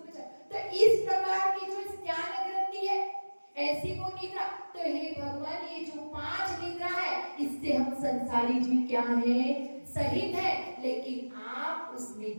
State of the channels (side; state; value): both; inverted; correlation -1.00